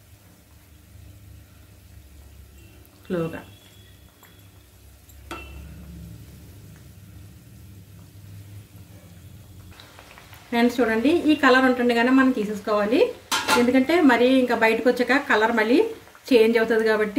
స్లోగా. ఫ్రెండ్స్ చూడండి, ఈ కలర్ ఉంటుండగానే మనం తీసేసుకోవాలి. ఎందుకంటే మరి ఇంకా బయటకు వచ్చాక కలర్ మళ్ళీ చేంజ్ అవుతుంది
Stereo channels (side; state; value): both; identical; correlation 1.00